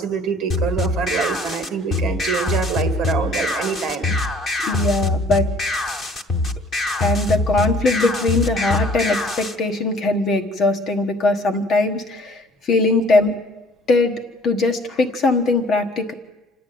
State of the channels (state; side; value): normal; both; correlation 0.54